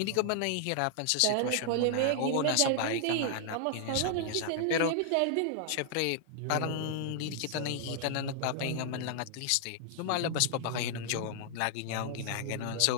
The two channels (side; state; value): both; different; correlation 0.00